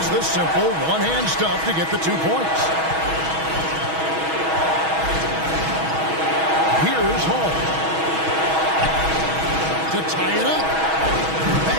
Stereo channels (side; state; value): left; late; 6.2 ms